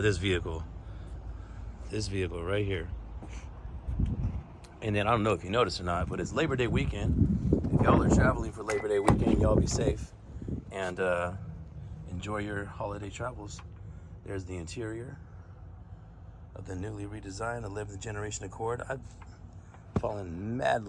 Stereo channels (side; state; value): both; identical; correlation 1.00